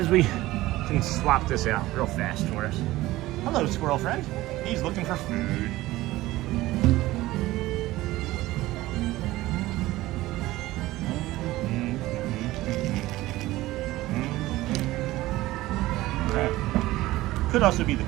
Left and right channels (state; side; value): quieter; left; 17.4 dB